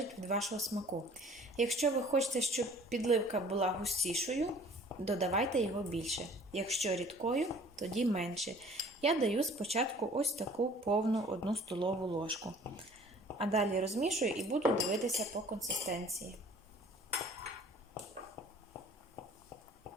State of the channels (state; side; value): normal; both; correlation 0.51